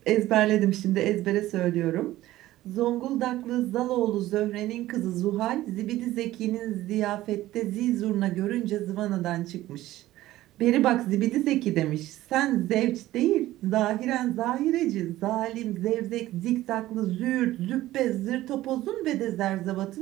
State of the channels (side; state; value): left; quieter; 15.6 dB